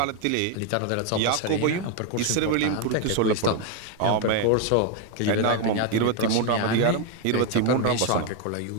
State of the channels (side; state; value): both; different; correlation 0.01